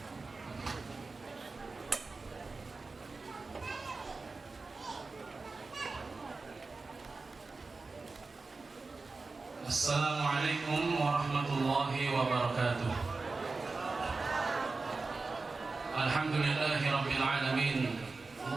Assalamualaikum warahmatullahi wabarakatuh. Alhamdulillahi rabbil alamin.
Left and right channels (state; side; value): quieter; left; 3.9 dB